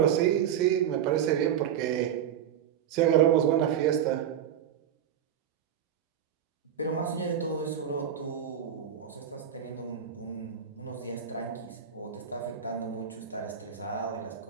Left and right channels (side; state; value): left; quieter; 9.2 dB